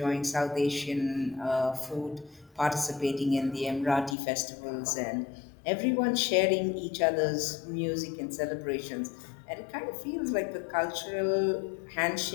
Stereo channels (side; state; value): right; drops out; at 4.2 s